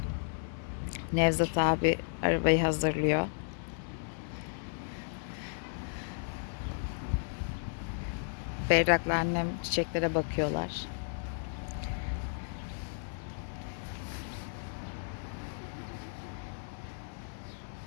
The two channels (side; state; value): right; silent; digital silence